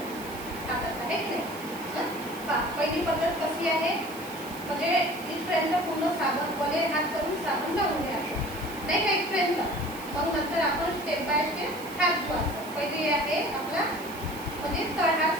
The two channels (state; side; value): noise; right; hiss, 16 dB below the sound